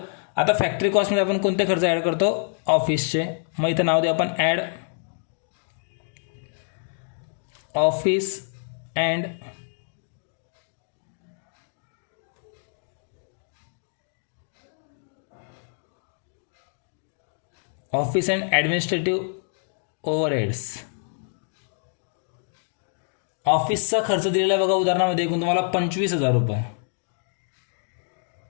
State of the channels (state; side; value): silent; right; digital silence